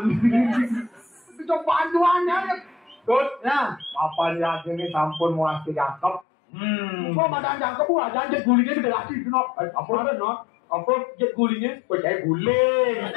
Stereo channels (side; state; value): right; drops out; at 6.2 s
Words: Itu bantuannya. Tut, apa ya ini sampun mulai jangkep. Kok badan jangkep gua jangan gulingnya gede lagi, Nok. Apa ada, Nok? Apa jet gulingnya? Kok kayak guling.